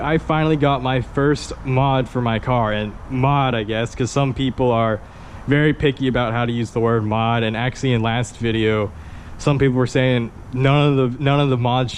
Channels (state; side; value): identical; both; correlation 1.00